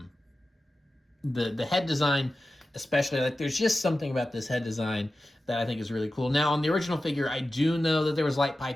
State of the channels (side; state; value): both; normal; correlation 0.94